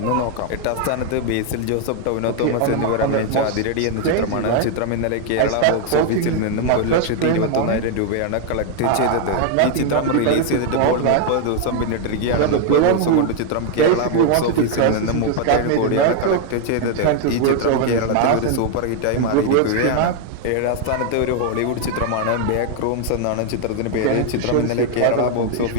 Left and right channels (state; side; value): different; both; correlation 0.00